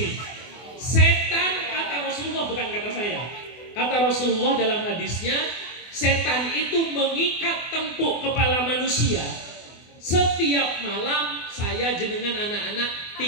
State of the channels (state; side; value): late; right; 24 ms